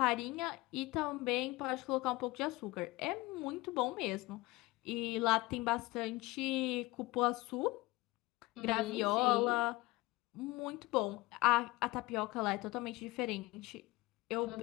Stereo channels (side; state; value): right; quieter; 21.1 dB